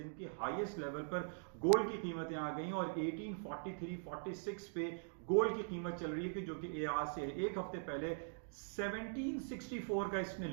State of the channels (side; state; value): left; silent; digital silence